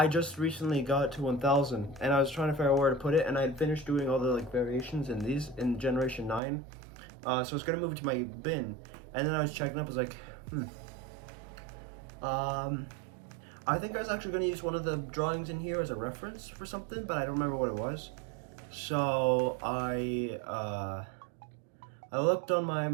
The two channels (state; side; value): drops out; left; at 6.4 s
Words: just recently got to 1000, and I was trying to figure out where to put it, and I had finished doing all the, variations in these, in Generation 9. So I was gonna move it to my bin, and then I was checking up, I was like, I think I was actually gonna use one of the drawings in here as a reference for something, but I don't remember what it was. So I looked on